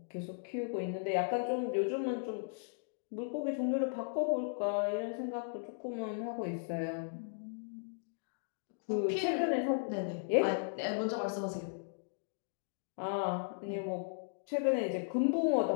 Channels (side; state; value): right; silent; digital silence